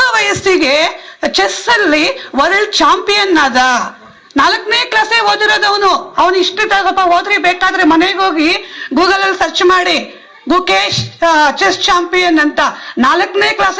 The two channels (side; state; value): both; identical; correlation 1.00